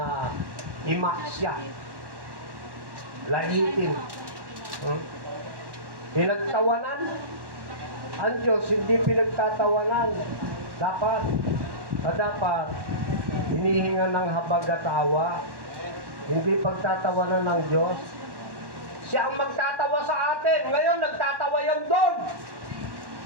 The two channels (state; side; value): late; left; 1.1 ms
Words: imaksya. Laitin. Pinagtawanan. Ang Diyos hindi pinagtatawanan. Dapat hinihinga ng habag at awa. Hindi pagtatawanan ng Diyos. Siya ang magtatawa sa atin. Ngayon, nagtatawa yan doon.